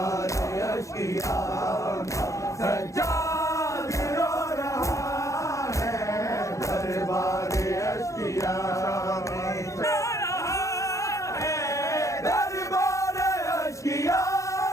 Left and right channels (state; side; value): late; right; 0.15 ms